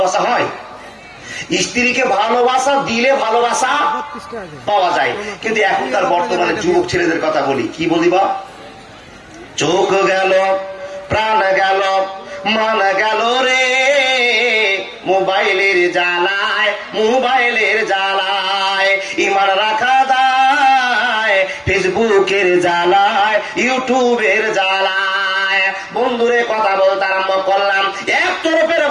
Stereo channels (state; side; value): identical; both; correlation 1.00